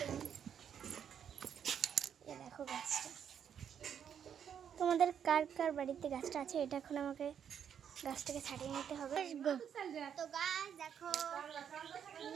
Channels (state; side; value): quieter; left; 8.4 dB